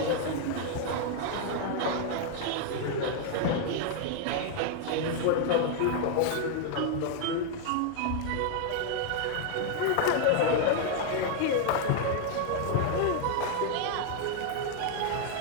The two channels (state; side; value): different; both; correlation 0.00